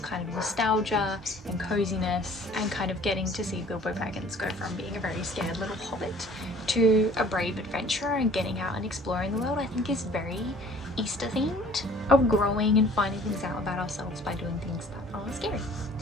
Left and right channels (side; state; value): both; normal; correlation 0.51